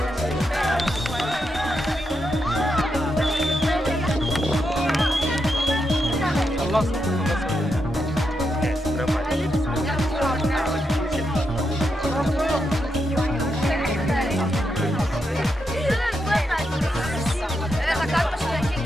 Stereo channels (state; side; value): normal; both; correlation 0.84